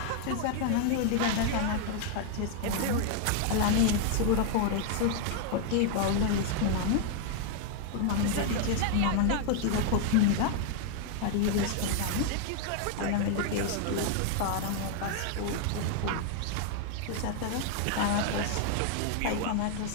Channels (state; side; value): different; both; correlation 0.00